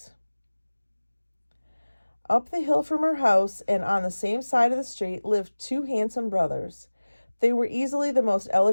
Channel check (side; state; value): both; inverted; correlation -1.00